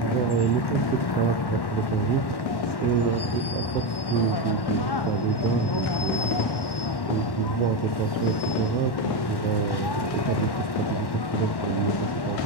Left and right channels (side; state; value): right; late; 1.1 ms